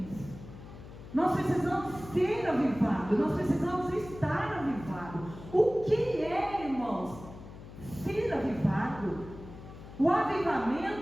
Nós precisamos ser avivados, nós precisamos estar avivados. O que é, irmãos, ser avivado? O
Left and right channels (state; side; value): noise; left; hum, 15 dB below the sound